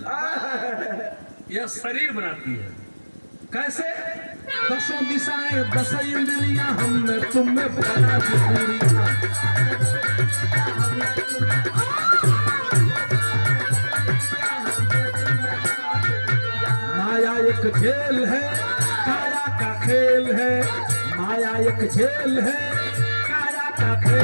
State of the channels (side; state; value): both; inverted; correlation -1.00